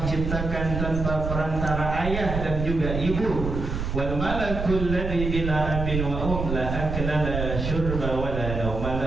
ciptakan tanpa perantara ayah dan juga ibu. Wal malakul ladzi bila abin wa la akla la syurba wa la nauma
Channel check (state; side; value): noise; right; rumble, 4 dB below the sound